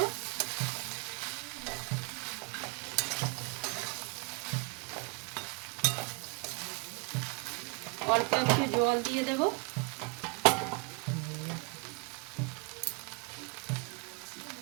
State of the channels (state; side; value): quieter; left; 30.5 dB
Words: অল্প একটু জল দিয়ে দেব।